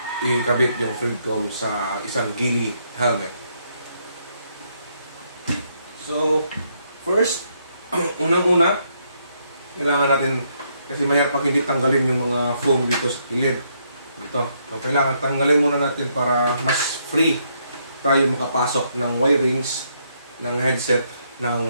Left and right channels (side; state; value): both; inverted; correlation -0.74